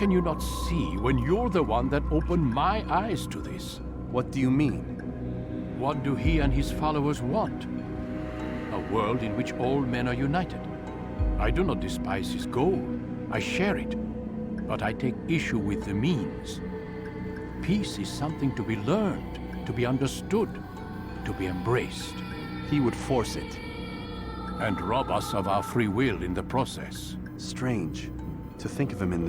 you not see when you're the one that opened my eyes to this? What do you mean? What do he and his followers want? A world in which all men are united. I do not despise his goal. I share it. But I take issue with the means. Peace is something to be learned, to be understood, to be embraced. He would force it. And rob us of our free will in the process. Strange to think of him in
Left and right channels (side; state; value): both; identical; correlation 1.00